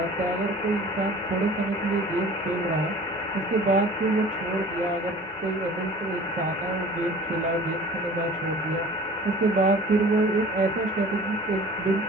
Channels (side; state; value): both; normal; correlation 0.45